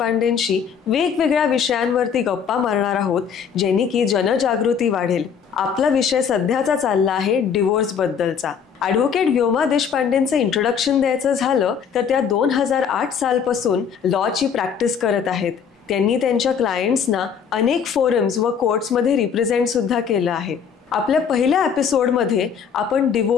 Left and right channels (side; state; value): right; quieter; 7.1 dB